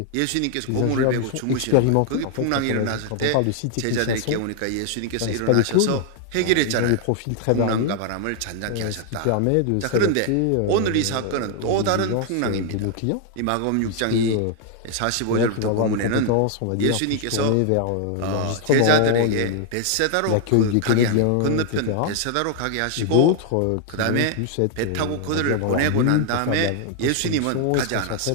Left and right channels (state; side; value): different; both; correlation 0.00